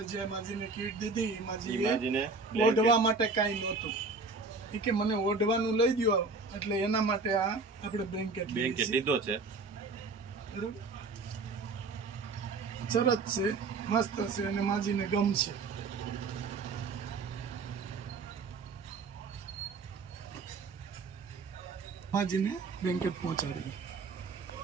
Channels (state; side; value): quieter; left; 4.0 dB